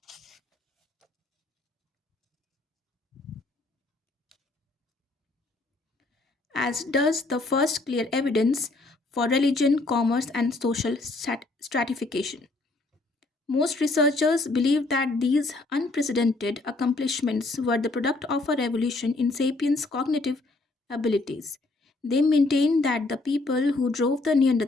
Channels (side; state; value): right; quieter; 3.2 dB